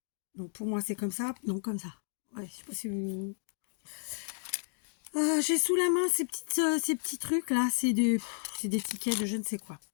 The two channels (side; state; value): right; silent; 56 dB below the other